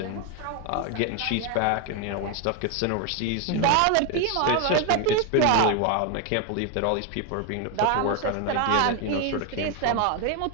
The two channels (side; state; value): both; different; correlation 0.01